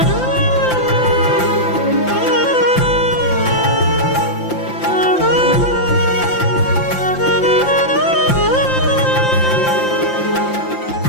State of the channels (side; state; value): right; late; 5.8 ms